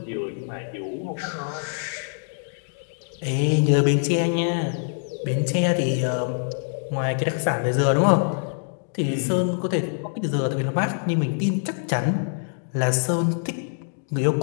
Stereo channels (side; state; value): right; silent; digital silence